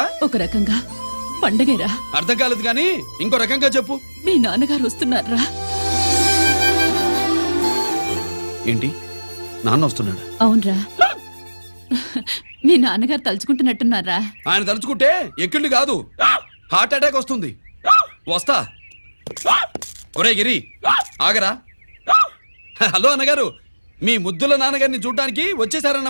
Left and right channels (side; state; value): both; inverted; correlation -1.00